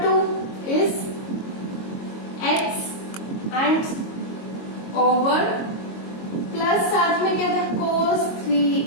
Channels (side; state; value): right; late; 22 ms